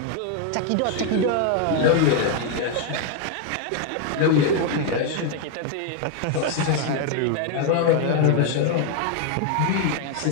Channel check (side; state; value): both; different; correlation 0.00